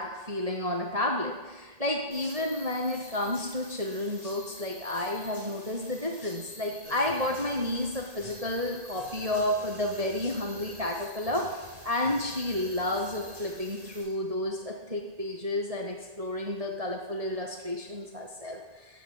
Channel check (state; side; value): late; left; 1.8 ms